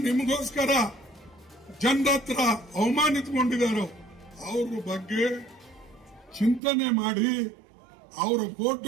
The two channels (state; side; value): drops out; left; at 6.6 s